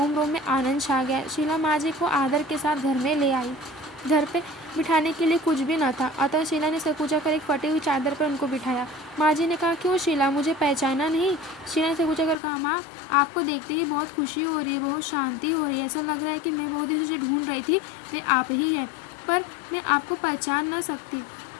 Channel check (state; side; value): drops out; right; at 12.4 s